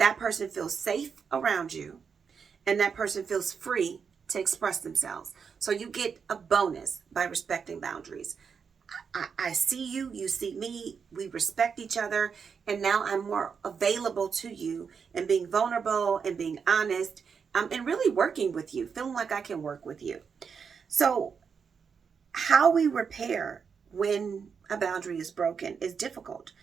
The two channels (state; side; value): quieter; left; 6.2 dB